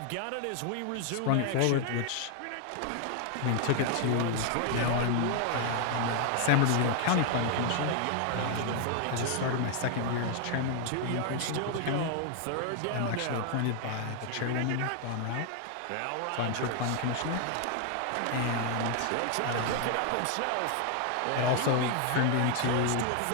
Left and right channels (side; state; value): both; different; correlation 0.00